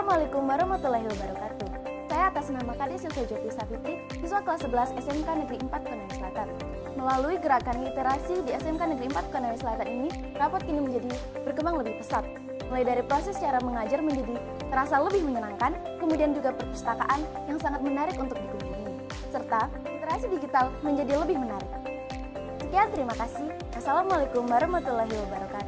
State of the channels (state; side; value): identical; both; correlation 1.00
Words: warahmatullahi wabarakatuh. Saya atas nama Kades Yusuf Jopri Safitri, siswa kelas 11 SMK Negeri 4 Konawe Selatan. Melalui gerakan literasi di SMK Negeri 4 Konawe Selatan ini, rapot kini menjadi berkembang lebih pesat. Mulai dari proses cara mengajar menjadi terasa lebih menyenangkan, kemudian juga perpustakaan yang sangat menarik untuk dikunjungi, serta literasi digital menjadi lebih menarik. Sekian, terima kasih. Assalamualaikum warahmatullahi